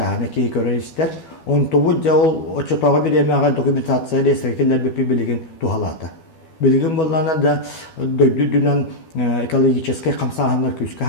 ки көрөйстер. Он тобу жол отчетага беремега документация реестрге келер билеген тухалата. Bilgin bollarına da döydüdünen ekologический камсаһаннар күскә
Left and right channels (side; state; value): right; late; 12 ms